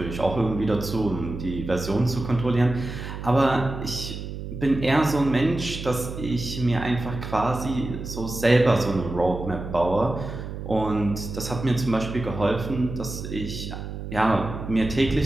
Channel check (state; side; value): noise; right; hum, 8 dB below the sound